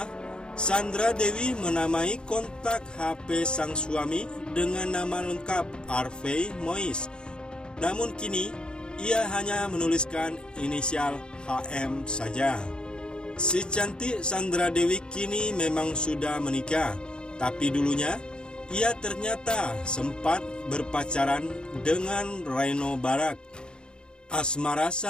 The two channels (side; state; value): right; late; 0.049 ms